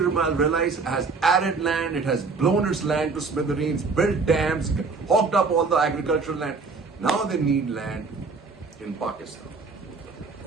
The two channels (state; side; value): quieter; left; 4.4 dB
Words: has arid land. It has blown its land to smithereens, built dams, hogged up all the agricultural land. Now they need land in Pakistan.